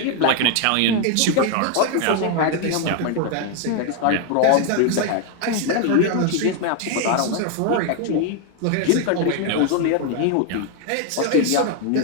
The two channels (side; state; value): both; different; correlation 0.00